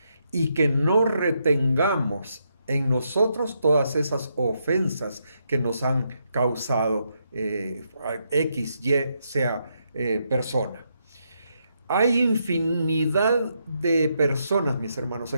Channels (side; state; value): both; inverted; correlation -0.79